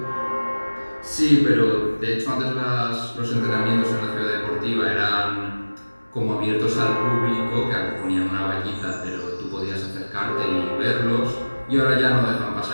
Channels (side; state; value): both; inverted; correlation -1.00